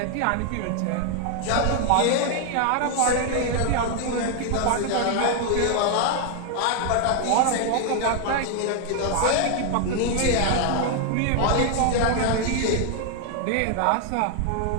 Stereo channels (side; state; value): both; different; correlation 0.00